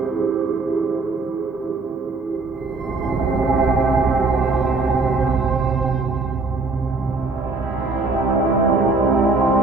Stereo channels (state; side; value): quieter; left; 3.6 dB